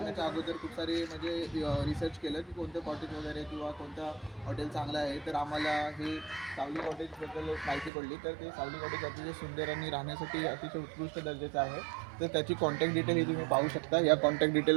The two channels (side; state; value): left; drops out; at 7.9 s